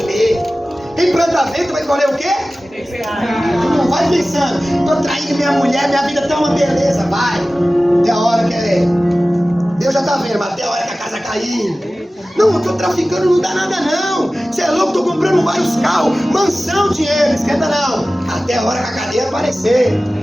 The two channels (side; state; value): both; normal; correlation 0.96